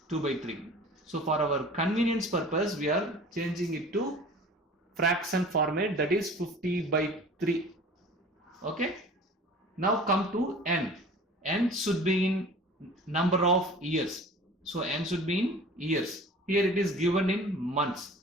2 by 3. So for our convenience purpose, we are changing it to fraction format, that is 50 by 3. Okay, now come to n. N should be in number of years, so n should be in years. Here it is given in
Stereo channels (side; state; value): both; normal; correlation 0.43